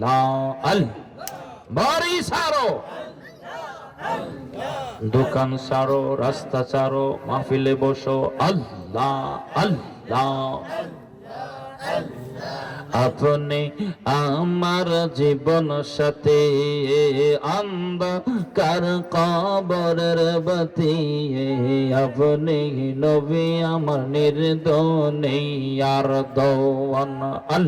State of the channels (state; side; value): identical; both; correlation 1.00